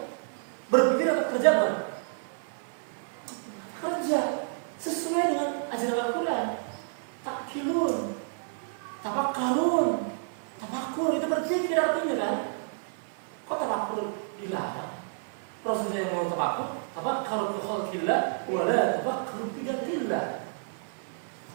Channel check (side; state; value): left; silent; 56 dB below the other